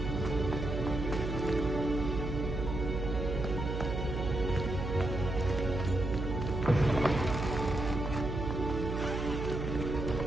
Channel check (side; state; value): right; noise; hum, 3 dB below the sound